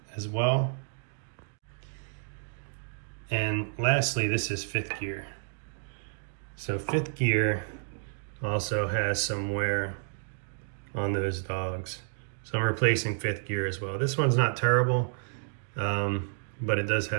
as well. And lastly, this is 5th gear. So 5th gear also has some wear on those dogs. So I'm replacing 5th gear as well. This one's not terrible, but it does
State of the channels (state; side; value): silent; left; digital silence